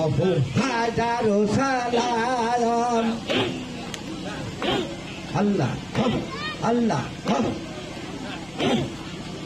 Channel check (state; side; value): noise; left; hum, 24 dB below the sound